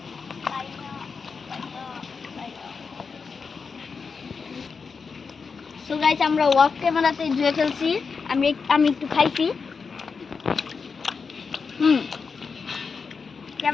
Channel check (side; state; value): right; quieter; 5.2 dB